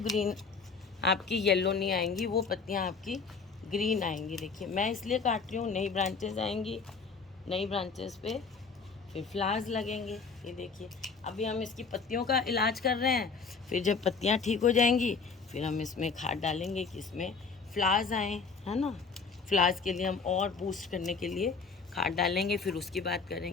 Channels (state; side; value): quieter; right; 5.0 dB